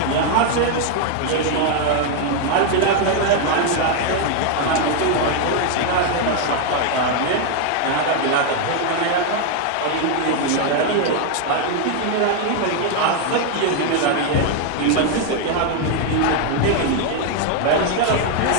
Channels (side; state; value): both; different; correlation 0.00